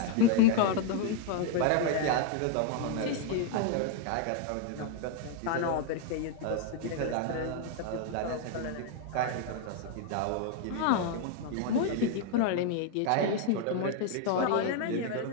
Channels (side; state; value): both; different; correlation 0.00